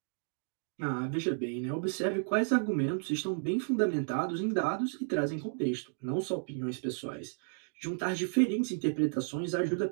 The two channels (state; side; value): silent; left; digital silence